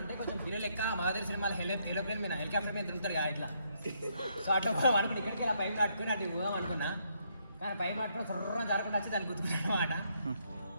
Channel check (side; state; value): both; inverted; correlation -0.74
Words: కొంచెం హీరో లెక్క మగధీర సినిమాలో ఏరోప్లేన్ మీద హెలికాప్టర్ మీద తిరుగుతారు కదా ఇట్లా. సో అట్లా పోదాం అనుకున్నా, ఇక్కడికి ఇలా పైపు కట్టుకుని అటు పోదాం అనుకున్నా. కానీ పైపు కట్టుకుని సర్రం జరగకుండా వచ్చి దాన్ని గుర్తుకున్నాను అనమాట.